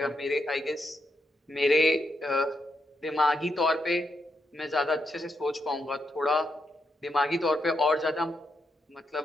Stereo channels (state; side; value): normal; both; correlation 0.81